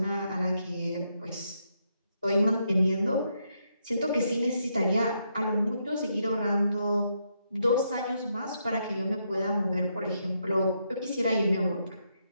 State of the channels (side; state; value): both; inverted; correlation -0.79